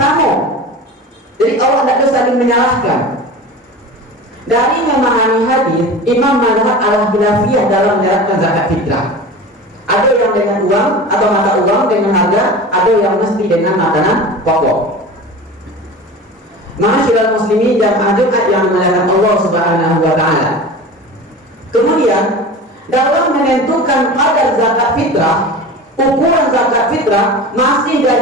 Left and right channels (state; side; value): normal; both; correlation 0.34